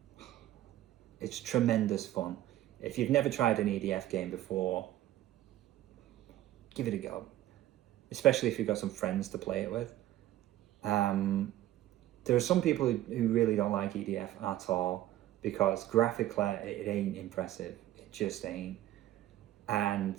It's tremendous fun. If you've never tried an EDF game before, give it a go. Especially if you've got some friends to play it with. There are some people who really don't like EDF at all because graphically it ain't impressive. It just ain't. And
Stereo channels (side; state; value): left; quieter; 14.0 dB